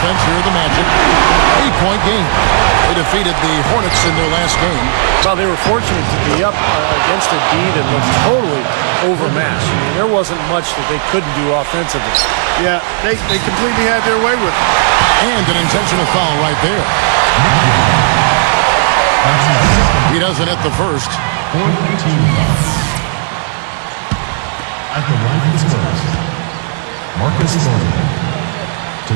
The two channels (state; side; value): silent; left; 63 dB below the other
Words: here are the Magic. 8-point game. They defeated the Hornets in their last game. Well, they were fortunate to be up against a D that looked totally overmatched. I mean, there wasn't much that they couldn't do offensively. Yeah, they completely had their way with it. And an intentional foul right there. He doesn't hit the first. At the line for the Spurs, Marcus Thornton